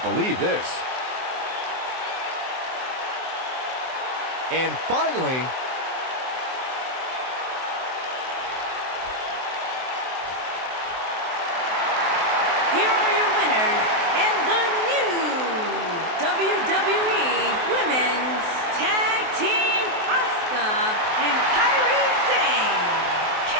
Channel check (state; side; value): late; left; 23 ms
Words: believe this. And finally, here are your winners and the new WWE Women's Tag Team, Asuka and Kairi Sane.